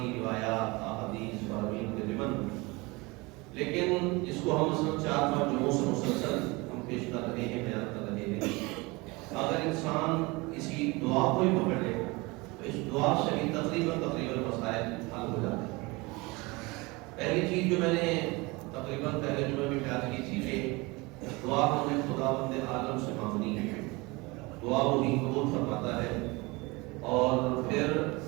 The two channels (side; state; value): left; quieter; 24.6 dB